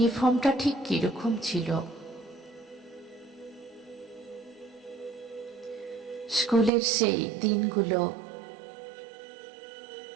ঠিক কিরকম ছিল, স্কুলের সেই দিনগুলো,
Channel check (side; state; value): left; drops out; at 6.7 s